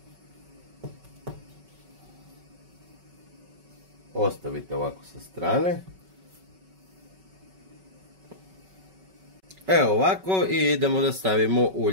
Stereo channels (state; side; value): late; left; 5.3 ms